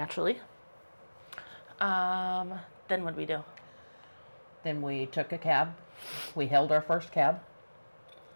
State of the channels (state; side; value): inverted; both; correlation -1.00